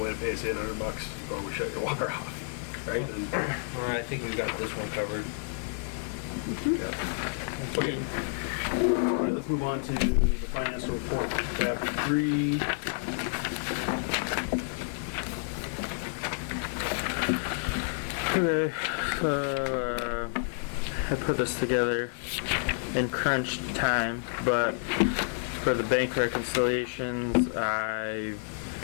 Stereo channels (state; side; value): silent; right; 58 dB below the other